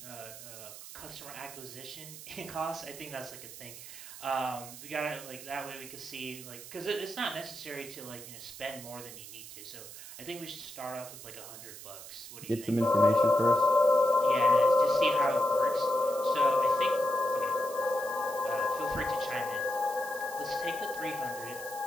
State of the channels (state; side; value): noise; right; hiss, 13 dB below the sound